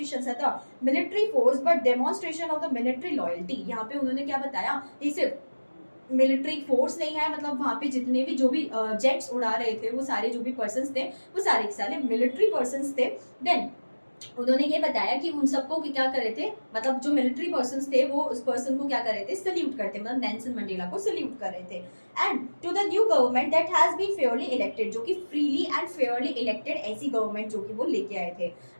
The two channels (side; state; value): both; inverted; correlation -1.00